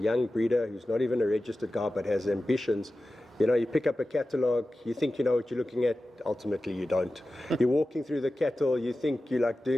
breeder who's not even a registered guy but has ambitions, you know, you pick up a catalogue, you think you know what you're looking at, ultimately you don't. You're walking through the cattle, you think you're like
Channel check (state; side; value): normal; both; correlation 0.94